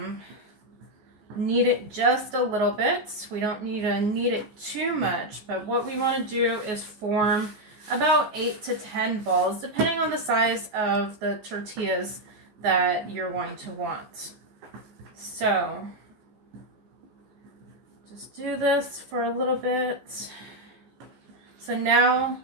knead it just a little bit. We don't need to knead it too much, but what we want to do is form about 8 to 10 balls, depending on the size of the tortillas that you're going to want. So just do this for a little bit. So now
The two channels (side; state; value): left; late; 14 ms